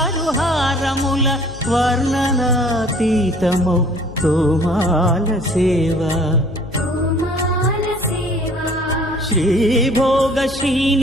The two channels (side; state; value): left; noise; hum, 16 dB below the sound